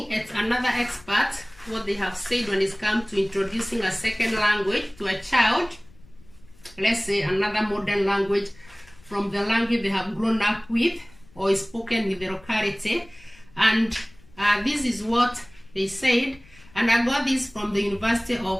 at another expert, what they have said when it comes to introducing a second language to a child, let's say another modern language from the language they have grown up with or is spoken in the locality. And this is what they said, and I got this from the University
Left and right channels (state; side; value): noise; left; rumble, 26 dB below the sound